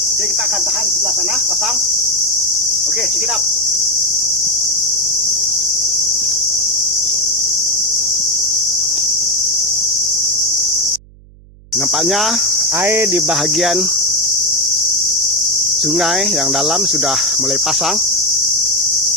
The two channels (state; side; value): noise; right; hum, 24 dB below the sound